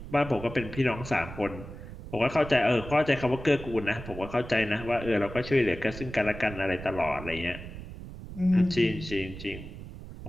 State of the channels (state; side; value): noise; right; rumble, 12 dB below the sound